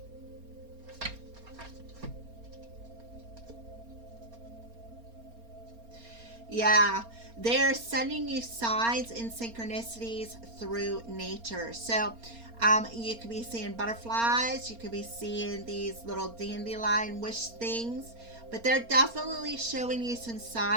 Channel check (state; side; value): late; left; 4.3 ms